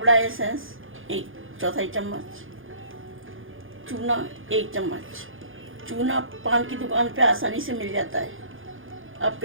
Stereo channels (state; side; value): late; left; 0.59 ms